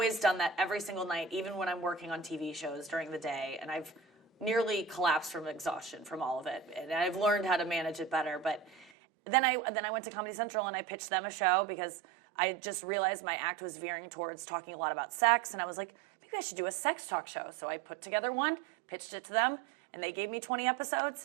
done that every single night, even when I'm working on TV shows during the day, and I've nearly collapsed from exhaustion from all of it, and I've learned how to manage it better. But then I went to Comedy Central, and I pitched them a show because I just realized my act was veering towards talking a lot about sex, and I was like, maybe I should do a sex talk show. So I put together one, pitched it to them, and they gave me 20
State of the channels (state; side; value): drops out; left; at 8.9 s